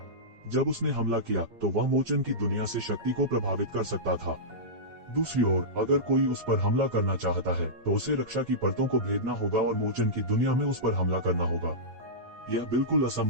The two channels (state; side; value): late; left; 8.7 ms